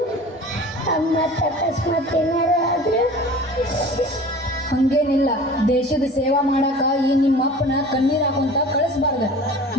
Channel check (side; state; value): both; normal; correlation 0.41